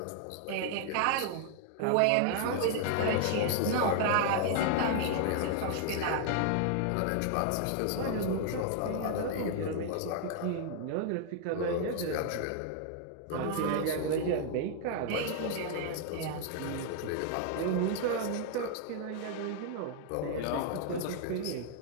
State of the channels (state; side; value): different; both; correlation 0.00